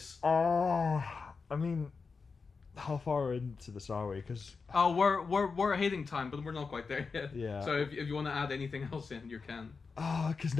I mean, how far into this are we? Because Oh, we're hitting time, but we're not quite there yet. Yeah. So if you want to add anything else in, you can.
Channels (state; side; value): quieter; right; 4.8 dB